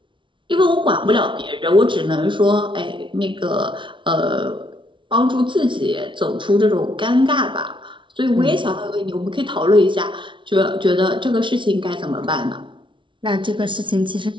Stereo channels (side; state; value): left; late; 0.24 ms